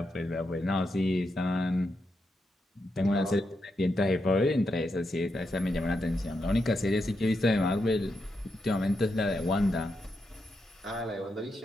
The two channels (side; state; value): both; normal; correlation 0.84